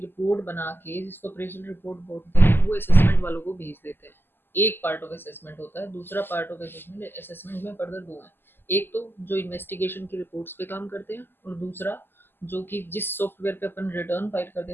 बना के जिसको अप्रेजल रिपोर्ट बोलते हैं वो असेसमेंट वालों को भेज देते हैं, एक पार्ट ऑफ असेसमेंट होता है। दूसरा पार्ट ऑफ असेसमेंट, असेसमेंट में फर्दर दो है, एक तो जो इन्वेस्टिगेशन की रिपोर्ट्स पे काम करते हैं, और दूसरा जो कि जिस सॉफ्टवेयर पे अपन रिटर्न फाइल करते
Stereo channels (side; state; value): right; late; 0.099 ms